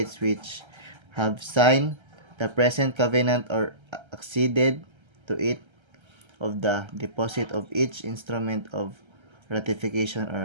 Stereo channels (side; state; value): left; late; 1.3 ms